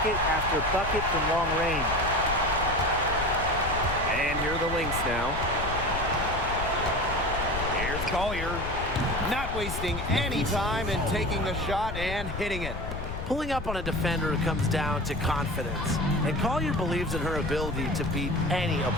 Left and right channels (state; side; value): noise; left; rumble, 6 dB below the sound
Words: after bucket from long range. And here are the Lynx now. Here's Collier. Not wasting any time in taking the shot and hitting it. Pulling up on a defender comes down to confidence. And Collier believes in her ability to beat any